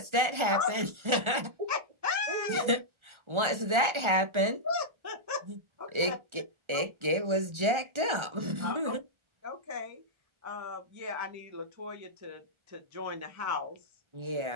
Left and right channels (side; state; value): left; late; 1.4 ms